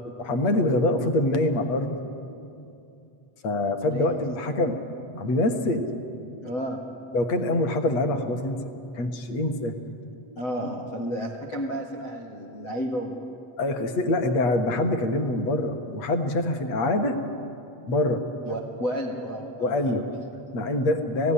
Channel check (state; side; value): late; right; 8.1 ms